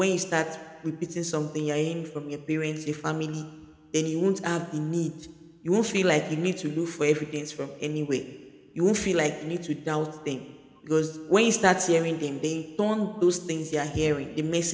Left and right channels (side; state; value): both; identical; correlation 1.00